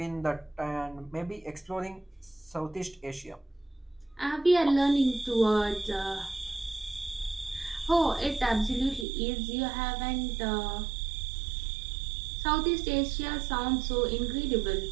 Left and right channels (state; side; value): drops out; left; at 9.1 s